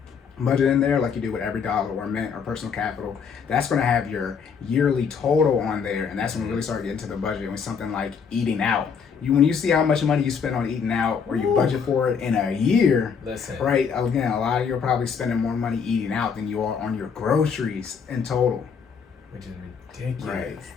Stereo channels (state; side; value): quieter; right; 6.4 dB